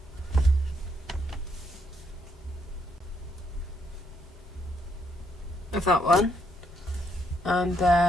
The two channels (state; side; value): normal; both; correlation 0.73